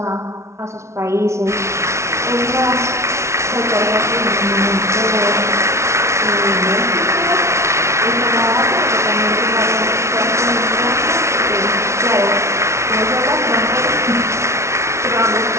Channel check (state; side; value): late; left; 0.13 ms